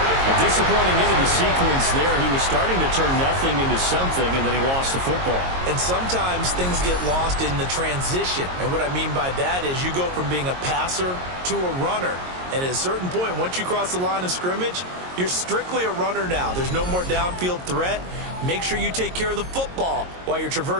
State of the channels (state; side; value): late; left; 22 ms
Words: A disappointing end of the sequence there. He was starting to turn nothing into something, and then he lost the football. And sometimes things get lost in the transition. And what I mean by that is you go from being a passer to a runner. And at a certain point, once you cross the line of scrimmage, you're strictly a runner now. There's no more downfield threat. Make sure you take care of the football while you're